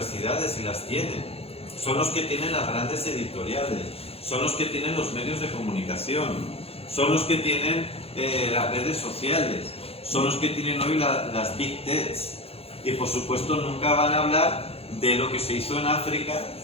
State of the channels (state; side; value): late; right; 0.29 ms